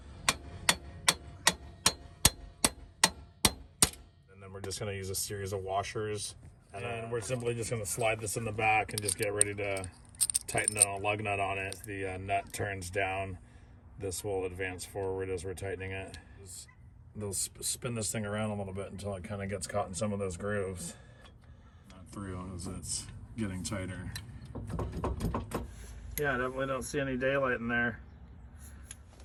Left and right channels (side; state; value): both; identical; correlation 1.00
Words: And then we're just gonna use a series of washers. And then we're simply just gonna slide this in the back and just get ready to tighten a lug nut on it. The nut turns down. This will advance forward as we're tightening it. They'll spin this thing around a little bit until it kind of gets caught in some of those grooves. Not through as it's getting tighter. Yeah, definitely don't see any daylight in there.